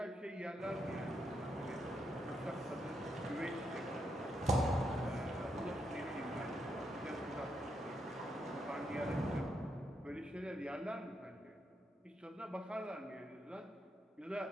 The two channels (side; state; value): both; normal; correlation 0.80